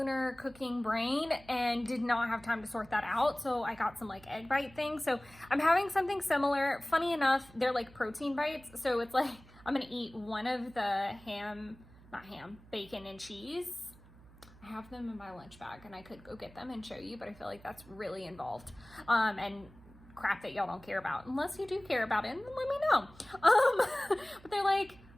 cooking brain and did not have time to sort that out. So I got some egg bite things. So I'm having something similar. Funny enough, they're protein bites. So it's I'm going to eat one of the bacon and cheese. I have them in my lunch bag and I could go get them and show you, but I feel like that's really involved. And crap that y'all don't care about. Unless you do care about it, then let me know. But they're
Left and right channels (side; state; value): right; noise; hum, 23 dB below the sound